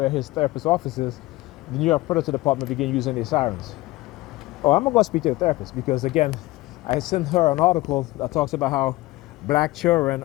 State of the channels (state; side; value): quieter; right; 19.2 dB